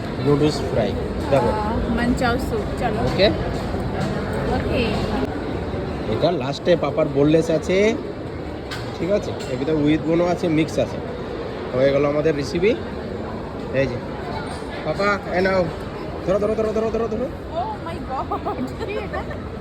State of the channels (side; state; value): both; identical; correlation 1.00